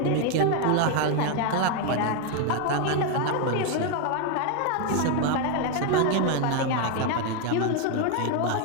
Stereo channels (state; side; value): different; both; correlation 0.01